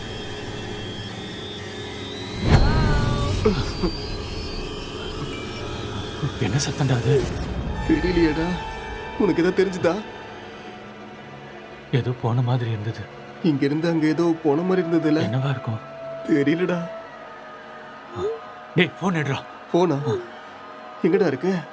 Hello? என்ன சத்தம்டா அது? தெரியலையேடா. உனக்கு ஏதோ தெரிஞ்சுதா? ஏதோ போன மாதிரி இருந்தது. இங்க இருந்து அங்க ஏதோ போன மாதிரி இருந்ததுல. என்னவா இருக்கும்? தெரியலடா. டேய், ஃபோன் எடுறா. போனா எங்கடா இருக்கு?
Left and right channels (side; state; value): both; identical; correlation 1.00